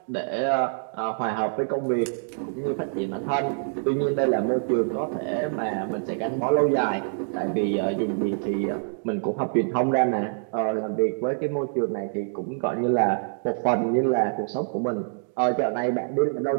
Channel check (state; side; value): silent; left; digital silence